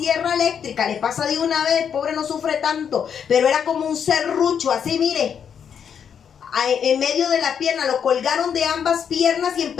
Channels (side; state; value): right; quieter; 7.7 dB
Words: eléctrica. Le pasa de una vez, pobre, no sufre tanto. Pero era como un serrucho, así mire. En medio de la pierna, lo colgaron de ambas piernas y